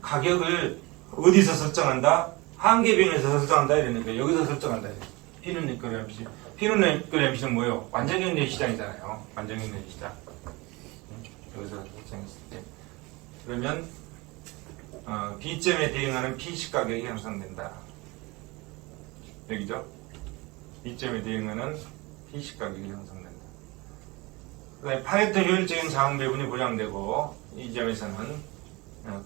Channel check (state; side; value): quieter; left; 24.0 dB